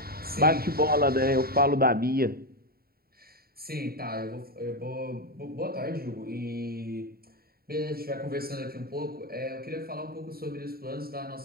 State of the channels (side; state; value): left; late; 0.44 ms